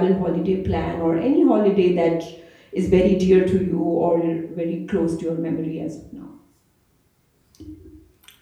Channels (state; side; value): identical; both; correlation 1.00